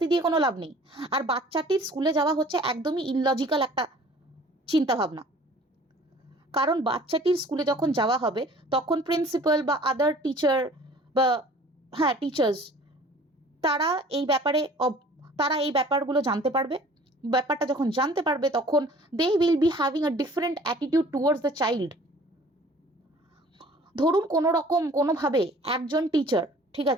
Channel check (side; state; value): both; normal; correlation 0.50